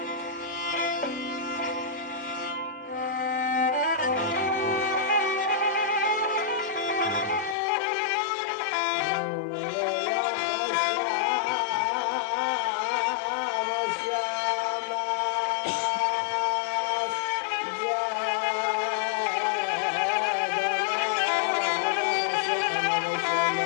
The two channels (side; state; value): right; drops out; at 7.6 s